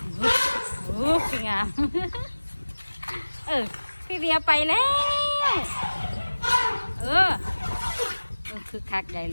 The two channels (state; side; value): inverted; both; correlation -1.00